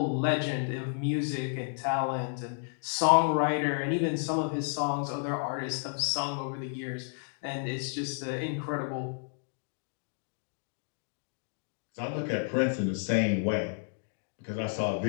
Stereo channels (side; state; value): right; silent; 57 dB below the other